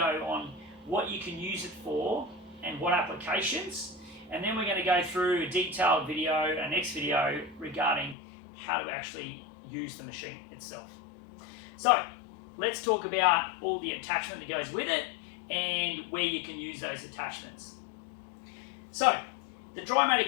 on what you can use it for and what applications. And then we're going to go through a detailed video, a next video, regarding how to actually use the machine itself. So let's talk about all the attachment that goes with it and where you can use those attachments. So, the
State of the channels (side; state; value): right; drops out; at 8.2 s